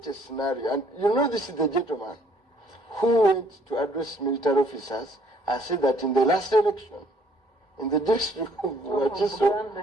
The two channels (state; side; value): normal; both; correlation 0.62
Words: a scenario. And you know, this is the gentleman who went to address military officers and said that in the last election, in the district of